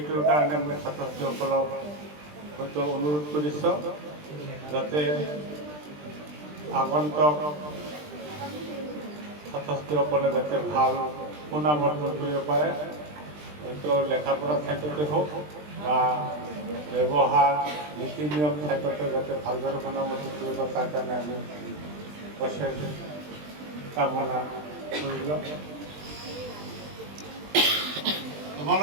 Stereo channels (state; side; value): late; left; 20 ms